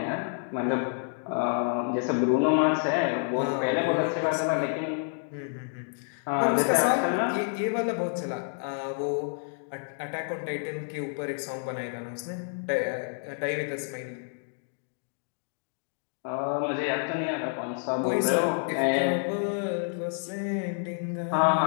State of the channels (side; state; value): right; silent; 59 dB below the other